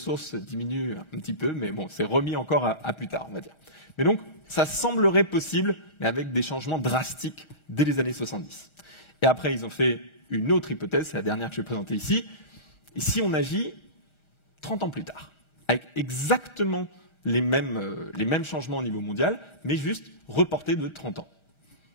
diminuent un petit peu, mais bon, c'est remis encore à plus tard, on va dire. Mais donc, ça semblerait possible, mais avec des changements drastiques dès les années 70. Et après, ils ont fait une autre hypothèse, c'est la dernière que je vais présenter ici. Et si on agit 30 ans plus tard, avec exactement les mêmes changements au niveau mondial, mais juste reportés de 30 ans.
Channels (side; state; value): right; late; 1.4 ms